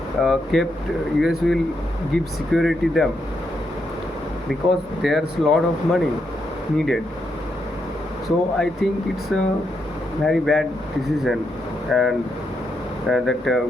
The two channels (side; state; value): both; normal; correlation 0.81